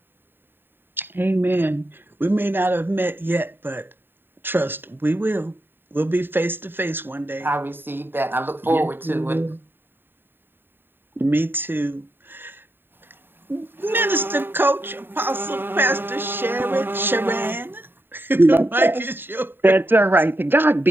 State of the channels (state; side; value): late; left; 0.098 ms